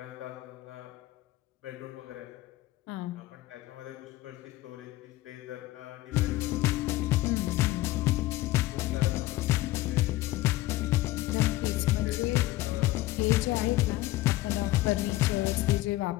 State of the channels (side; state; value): right; quieter; 17.4 dB